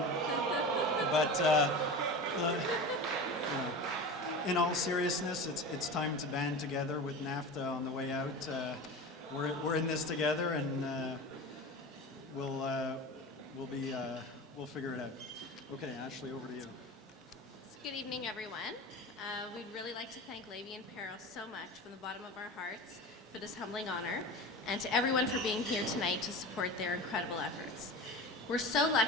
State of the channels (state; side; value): normal; both; correlation 0.30